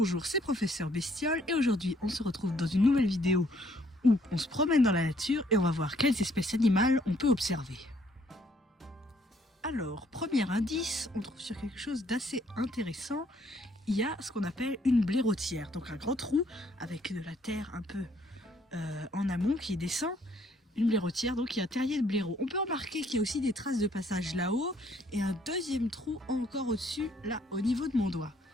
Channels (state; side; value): normal; both; correlation 0.66